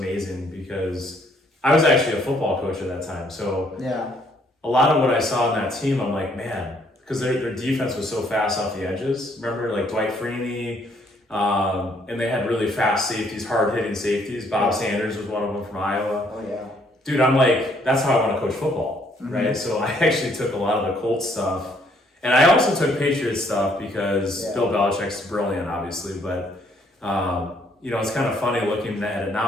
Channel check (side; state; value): both; normal; correlation 0.66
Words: because I was actually a football coach at that time. So a lot of what I saw in that team, I'm like, man, because their defense was so fast off the edges. Remember, like Dwight Freeney, and they had really fast safeties, hard-hitting safeties. Bob Sanders was one of them from Iowa. Oh, yeah. Dude, I'm like, that's how I want to coach football, right? So I actually took a lot of the Colts stuff. And I also took Patriots stuff because Bill Belichick's brilliant, obviously. But, it's kind of funny looking at it